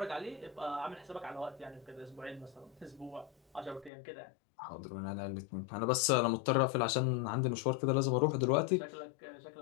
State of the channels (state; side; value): drops out; right; at 3.9 s